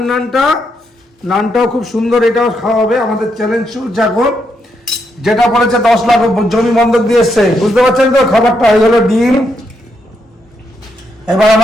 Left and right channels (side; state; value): both; normal; correlation 0.79